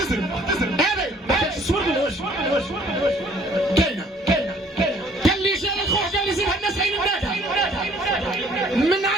هذا تصور بالوجه كاينه قال لي جا الخوخ قال لي زيد الناس عين النادى من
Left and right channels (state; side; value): normal; both; correlation 0.58